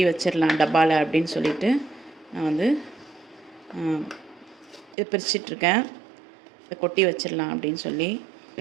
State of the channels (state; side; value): drops out; left; at 5.0 s